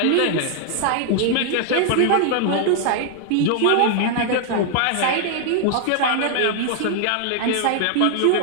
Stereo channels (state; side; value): different; both; correlation 0.00